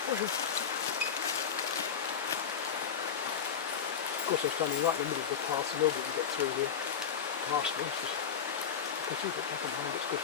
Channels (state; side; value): quieter; right; 7.3 dB